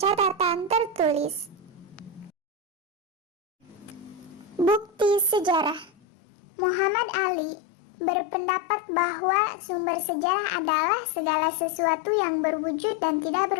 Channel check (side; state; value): right; drops out; at 5.9 s